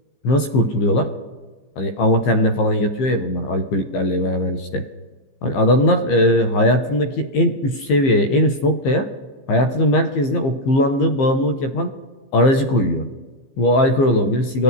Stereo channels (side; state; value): right; late; 15 ms